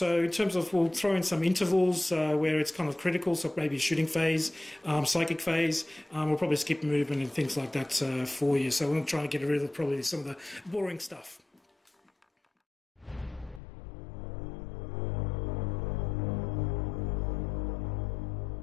in terms of, we'll throw in some intervals where it's kind of critical. So maybe shooting phase, psychic phase. We'll probably skip movement and things like that for you. So we'll try and get rid of probably some of the boring stuff.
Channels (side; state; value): right; drops out; at 13.6 s